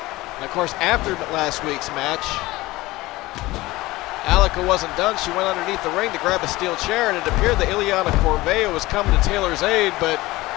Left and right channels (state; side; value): quieter; right; 19.2 dB